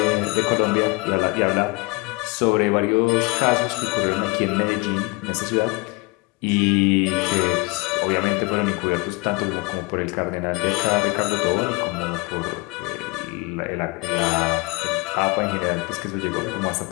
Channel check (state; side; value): quieter; right; 25.4 dB